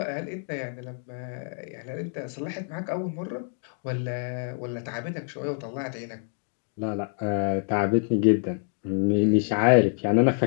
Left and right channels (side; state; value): right; silent; 58 dB below the other